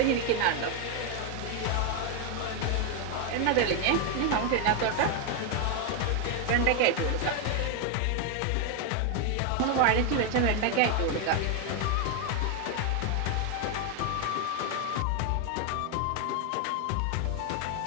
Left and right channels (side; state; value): both; different; correlation 0.01